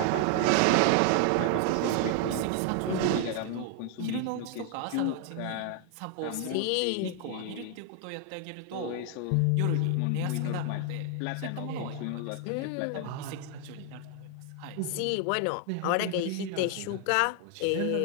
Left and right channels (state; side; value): different; both; correlation 0.00